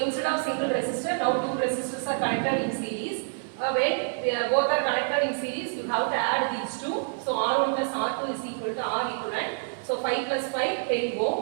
of single resistor, now two resistors are connected in series. When both are connected in series, you have to add these two. So R1 plus R2 is equal to R equivalent. So 5 plus 5, 10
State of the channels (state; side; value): silent; left; digital silence